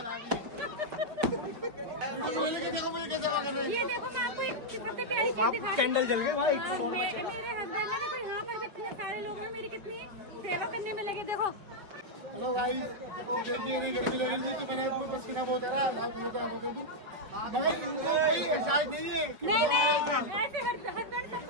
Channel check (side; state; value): left; late; 5.2 ms